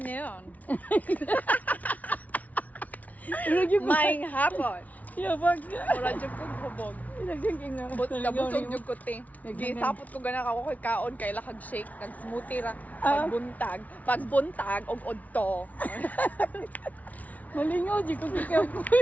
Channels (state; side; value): late; right; 0.072 ms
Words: Lagi mo. Maing hapon. Yabag. Wala dyan kong hubog. Naging nga. Busog yung kuti. Gisapot ko gana ka ko'y kaon kay lakag shake. Nag-smoothie ra. Pagbuntag. Pagbuntag og odto. Malingaw di ko kikaw ko.